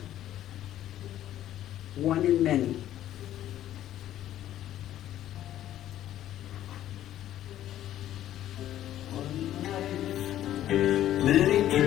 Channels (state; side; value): quieter; right; 12.4 dB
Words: One in Many. Many